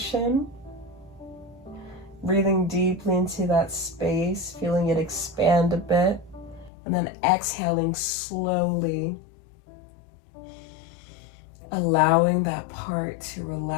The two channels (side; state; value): right; drops out; at 6.7 s